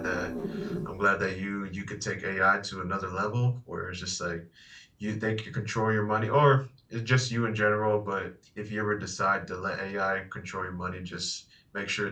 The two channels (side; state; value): both; identical; correlation 1.00